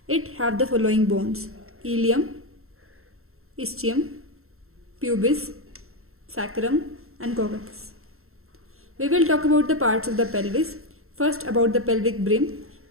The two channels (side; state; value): left; late; 0.62 ms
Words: It have the following bones: ilium, ischium, pubis, sacrum and coccus. We will talk about the parts of the pelvis. First, about the pelvic brim.